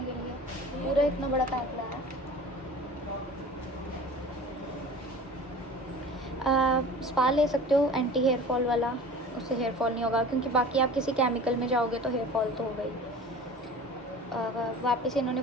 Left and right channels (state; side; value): normal; both; correlation 0.41